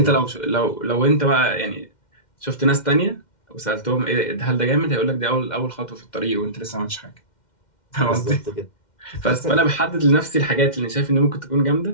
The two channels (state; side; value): late; right; 2.1 ms